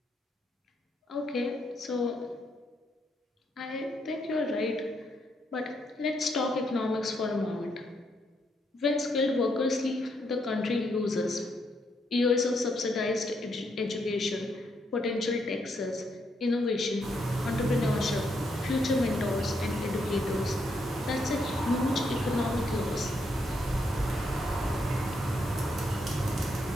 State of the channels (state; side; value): normal; both; correlation 0.77